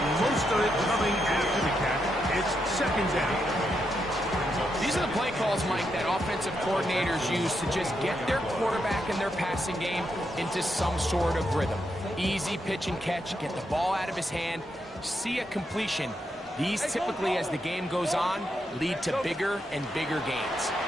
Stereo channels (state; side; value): normal; both; correlation 0.82